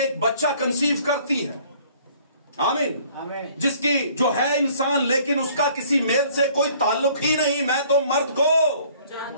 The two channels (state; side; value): inverted; both; correlation -0.57